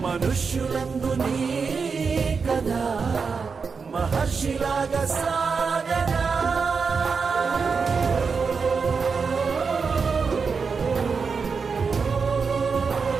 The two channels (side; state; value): left; quieter; 5.3 dB